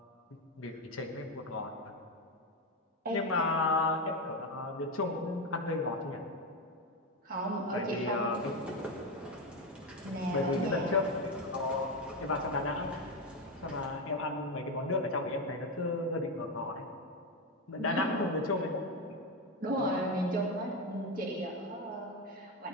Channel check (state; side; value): normal; both; correlation 0.12